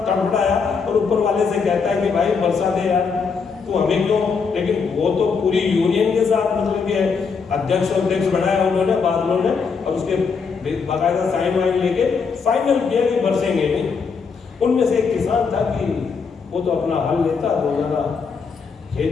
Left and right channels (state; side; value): quieter; right; 5.4 dB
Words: तड़फड़ाया और ऊपर वाले से कहता है कि भाई बरसा दे यार, तो हमें क्यों। लेकिन वो तो पूरी यूनियन के साथ मतलब कि अध्यक्ष बनाया उन्होंने, बादलों ने, और उसके बाकायदा साइन वाइन लेके फाइनल किया कि बरसेंगे नहीं। उनमें से एक किसान था कि वो तो अपना हल लेता, रोजाना